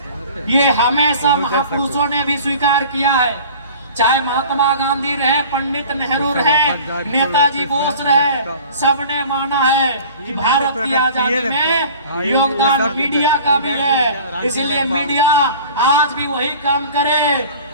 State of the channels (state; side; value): inverted; both; correlation -0.43